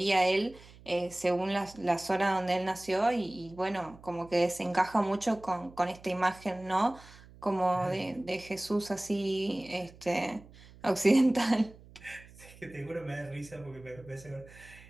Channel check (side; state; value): right; noise; hum, 22 dB below the sound